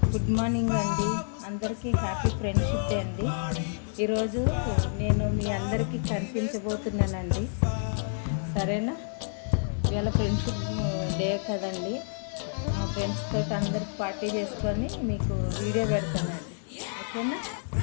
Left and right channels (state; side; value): silent; right; 59 dB below the other